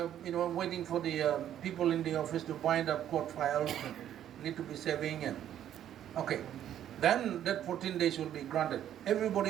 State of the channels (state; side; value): quieter; left; 10.8 dB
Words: waiting for the people in the office to bind up court files and need to be saving, and okay, then that 14 days will be granted.